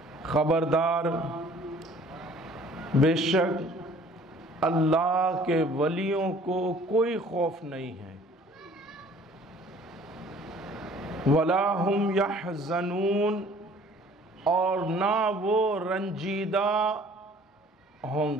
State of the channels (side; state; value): both; normal; correlation 0.53